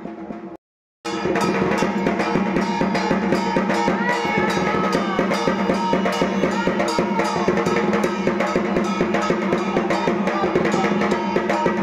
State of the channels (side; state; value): both; identical; correlation 1.00